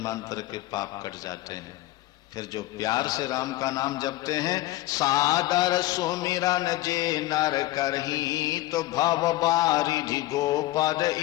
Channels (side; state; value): right; quieter; 17.0 dB